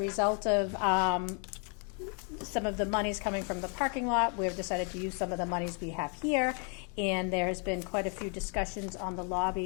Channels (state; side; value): quieter; right; 39.0 dB